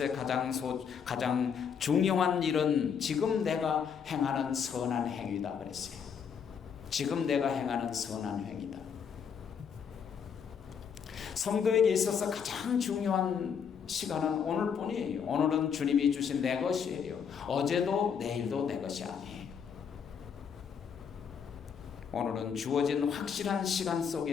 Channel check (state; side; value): quieter; right; 7.0 dB